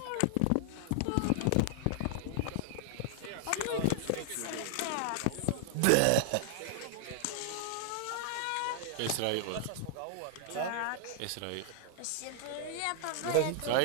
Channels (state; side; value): different; both; correlation 0.00